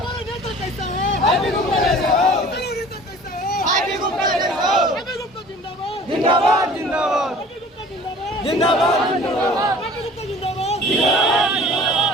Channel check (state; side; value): normal; both; correlation 0.47